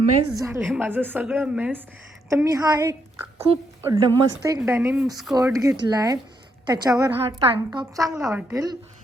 झालं आहे माझं, सगळं मेस. तर मी हा एक खूप मस्त एक डेनिम स्कर्ट घेतला आहे, त्याच्यावर हा टँक टॉप चांगला वाटेल.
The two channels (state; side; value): normal; both; correlation 0.77